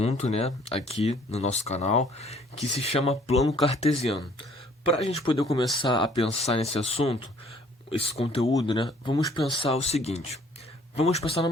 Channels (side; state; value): both; normal; correlation 0.58